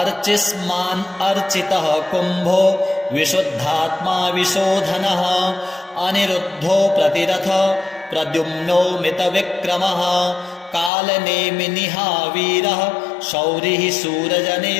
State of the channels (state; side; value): drops out; right; at 10.9 s